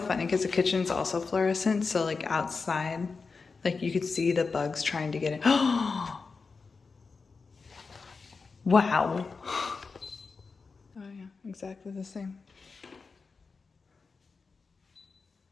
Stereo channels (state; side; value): quieter; right; 4.6 dB